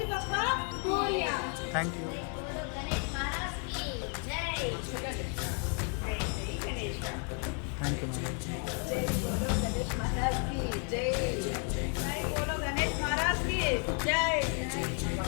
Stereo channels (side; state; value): right; quieter; 39.6 dB